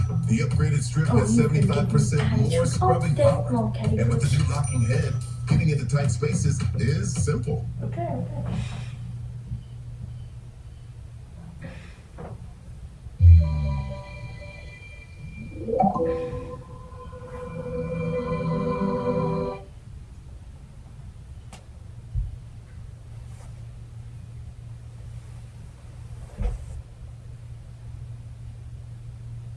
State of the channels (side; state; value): both; identical; correlation 1.00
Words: The upgraded strip has 75% more scrubbing power. And with the new locking head, getting into tight spaces is simple. Okay.